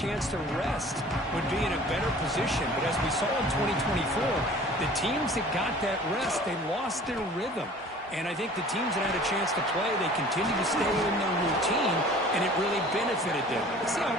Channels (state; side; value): normal; both; correlation 0.47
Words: to rest would be in a better position. But as we saw in 2024, the teams that got that rest, they lost their rhythm. And I think the teams that had a chance to play, they continue to stay in their routine, and it really benefited them. Let's see how